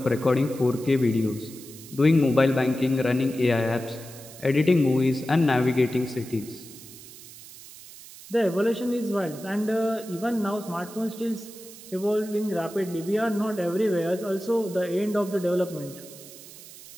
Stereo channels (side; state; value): right; noise; hiss, 17 dB below the sound